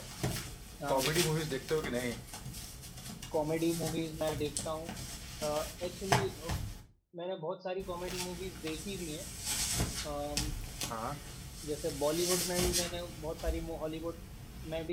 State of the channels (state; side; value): identical; both; correlation 1.00